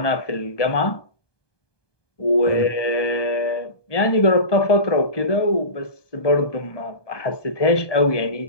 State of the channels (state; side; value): late; right; 1.2 ms